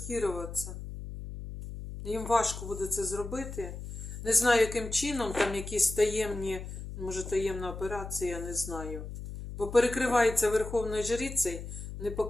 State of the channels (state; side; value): noise; left; hum, 9 dB below the sound